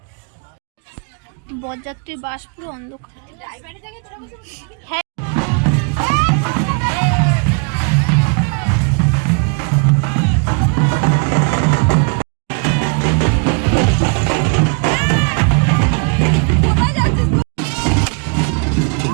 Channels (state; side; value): quieter; left; 37.2 dB